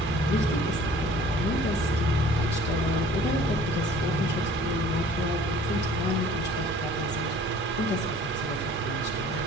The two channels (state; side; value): normal; both; correlation 0.51